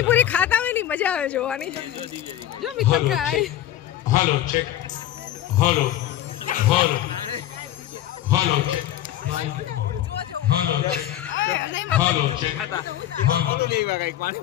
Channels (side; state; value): right; quieter; 12.4 dB